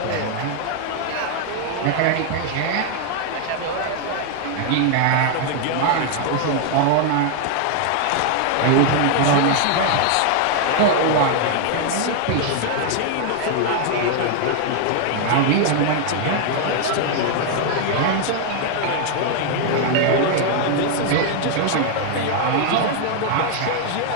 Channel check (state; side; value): different; both; correlation 0.00